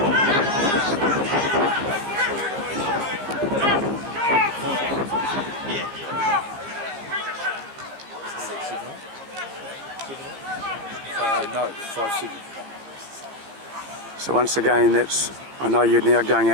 No, 5-7. So once again, I know you're now going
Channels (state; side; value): late; left; 15 ms